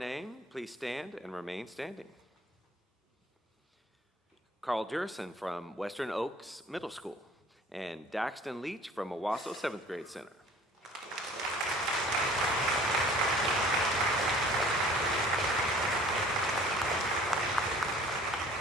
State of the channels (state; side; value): normal; both; correlation 0.50